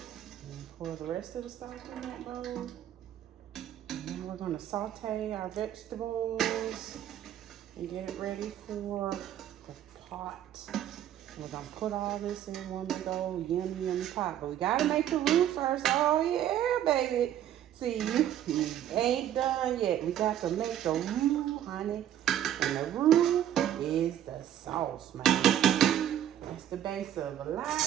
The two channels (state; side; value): quieter; left; 11.1 dB